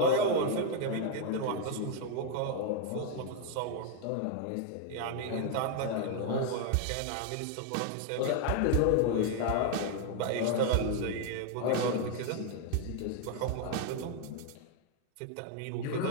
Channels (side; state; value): both; different; correlation 0.00